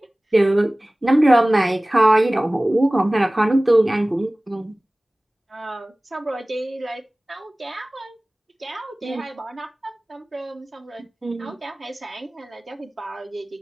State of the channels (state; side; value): normal; both; correlation 0.98